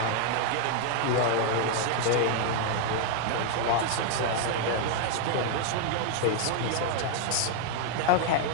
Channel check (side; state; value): both; different; correlation 0.00